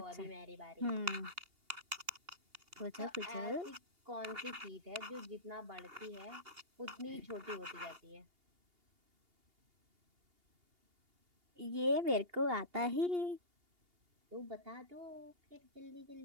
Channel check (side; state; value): left; late; 2.8 ms